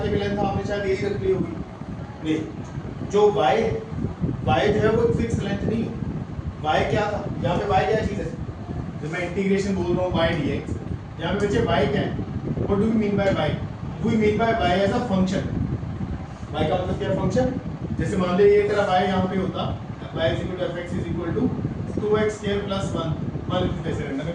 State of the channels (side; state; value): both; identical; correlation 1.00